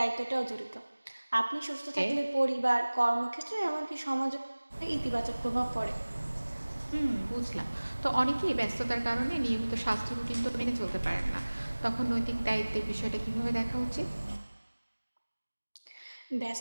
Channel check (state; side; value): inverted; both; correlation -1.00